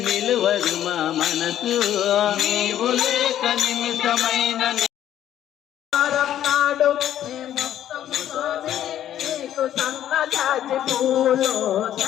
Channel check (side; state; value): right; quieter; 11.4 dB